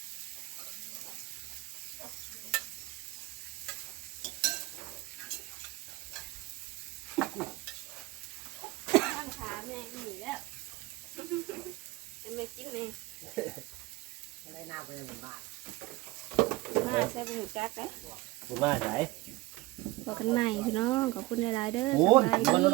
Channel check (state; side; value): quieter; left; 20.3 dB